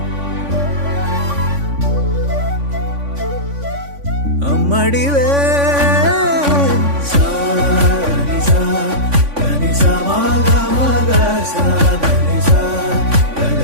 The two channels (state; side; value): late; left; 3.5 ms